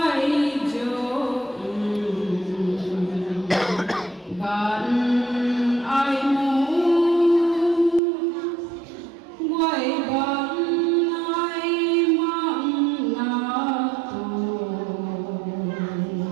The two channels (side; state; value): left; drops out; at 8.0 s